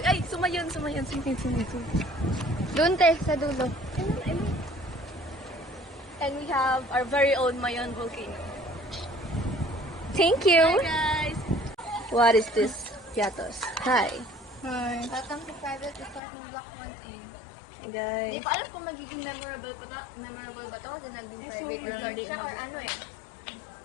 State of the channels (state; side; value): drops out; right; at 16.2 s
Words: Ay, sumayon. Doon te, sa dulo. And we have our very own Mayon volcano. Thank you. Hi guys! What is this? Yatos. Hi. Hi. Welcome to private resort ng Block 1A. Guys. Hindi ko alam kung magiging memorable ba to kasi naging private resort siya or ano eh.